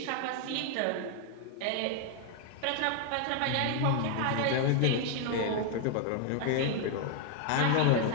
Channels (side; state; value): both; different; correlation 0.00